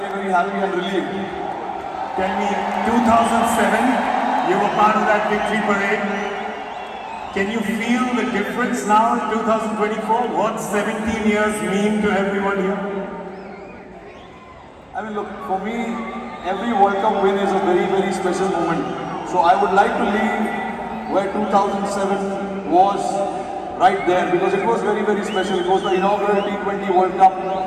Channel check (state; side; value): identical; both; correlation 1.00